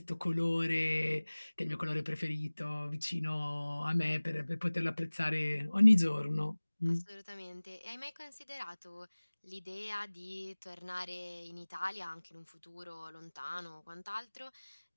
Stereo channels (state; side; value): inverted; both; correlation -1.00